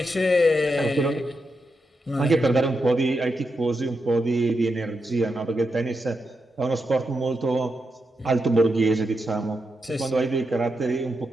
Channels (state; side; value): normal; both; correlation 0.85